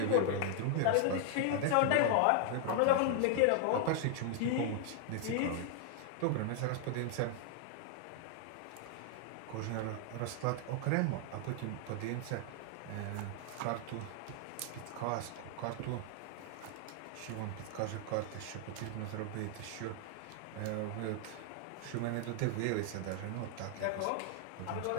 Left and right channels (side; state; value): both; different; correlation 0.00